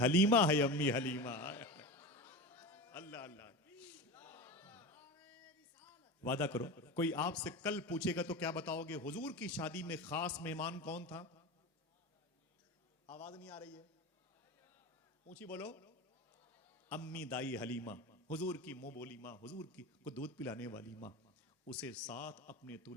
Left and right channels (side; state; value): both; normal; correlation 0.26